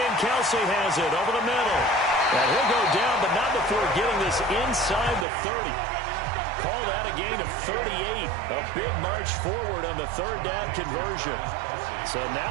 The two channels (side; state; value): left; drops out; at 5.2 s